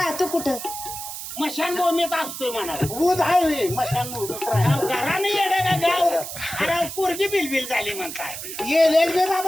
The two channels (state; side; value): noise; right; hiss, 8 dB below the sound